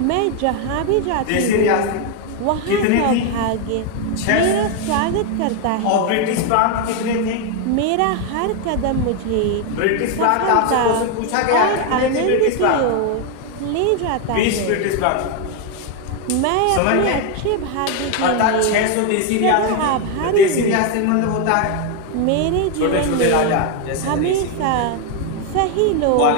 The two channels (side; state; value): both; different; correlation 0.01